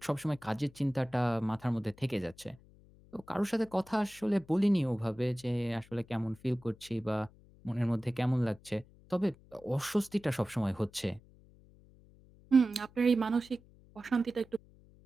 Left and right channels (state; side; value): noise; left; hum, 25 dB below the sound